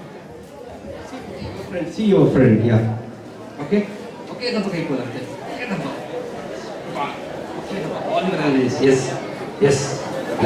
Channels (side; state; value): both; identical; correlation 1.00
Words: see your friend, yeah, okay దెబ్బకి అయిపోవాలి అంతే, all your analysis, yes